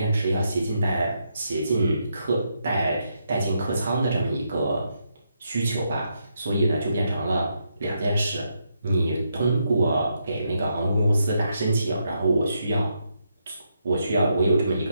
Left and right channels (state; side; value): inverted; both; correlation -0.81